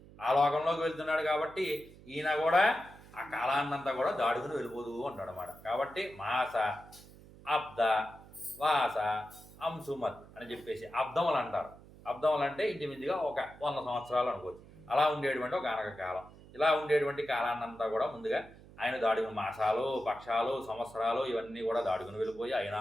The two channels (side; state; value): right; noise; hum, 20 dB below the sound